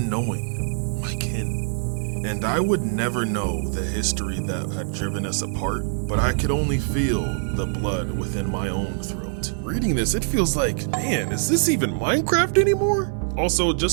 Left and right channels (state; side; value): silent; left; 56 dB below the other